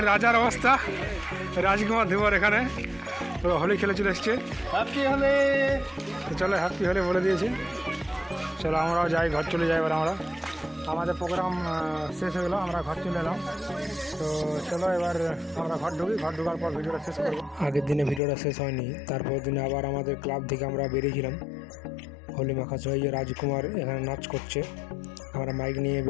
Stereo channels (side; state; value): right; drops out; at 18.2 s